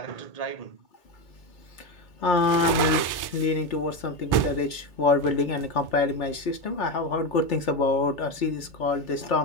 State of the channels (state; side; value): late; right; 2.2 ms